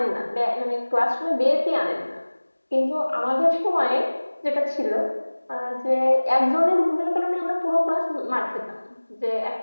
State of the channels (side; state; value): both; inverted; correlation -1.00